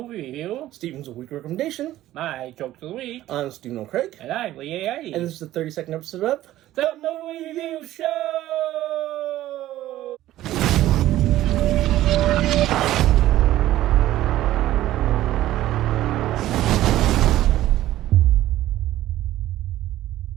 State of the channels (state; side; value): quieter; left; 14.4 dB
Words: review. Steven's Weekly Recommendation. My jokes of the week. I'm Stephen O'Craig. And I'm Lee A. And this is the 32nd episode of The Movie Review Show!